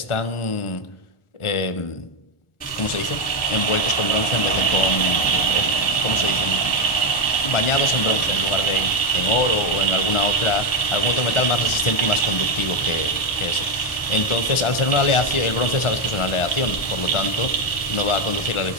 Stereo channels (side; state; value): right; late; 1.4 ms